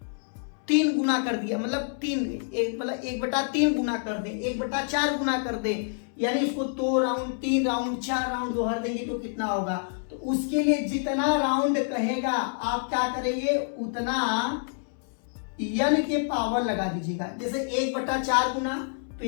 3 गुना कर दिया, मतलब 1/3 गुना कर दें, 1/4 गुना कर दें, यानी इसको 2 राउंड, 3 राउंड, 4 राउंड दोहर देंगे तो कितना होगा। तो उसके लिए जितना राउंड कहेगा आप क्या करेंगे, उतना n के पावर लगा दीजिएगा। जैसे 1/4 गुना, तो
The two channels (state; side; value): silent; right; digital silence